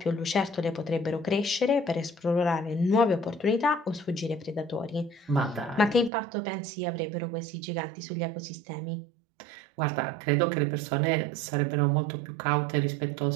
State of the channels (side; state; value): left; drops out; at 6.1 s